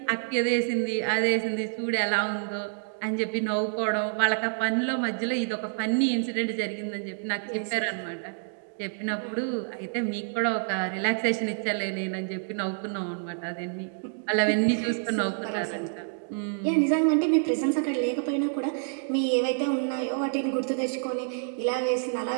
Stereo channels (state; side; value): silent; left; digital silence